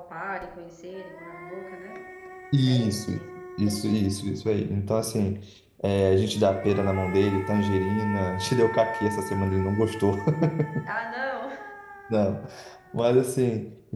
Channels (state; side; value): identical; both; correlation 1.00